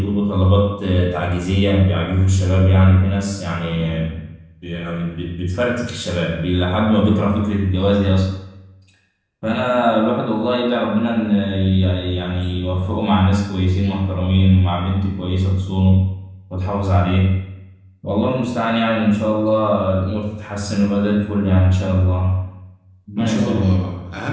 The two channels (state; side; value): identical; both; correlation 1.00